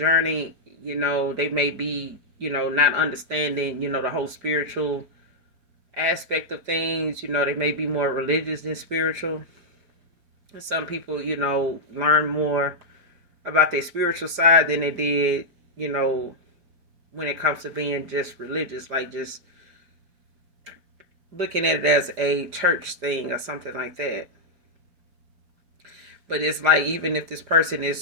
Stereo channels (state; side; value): late; left; 4.9 ms